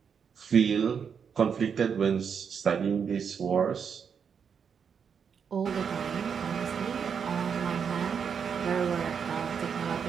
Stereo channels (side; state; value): left; quieter; 6.8 dB